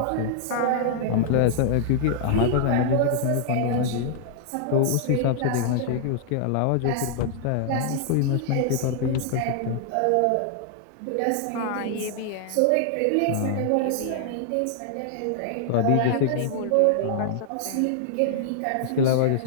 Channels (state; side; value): different; both; correlation -0.01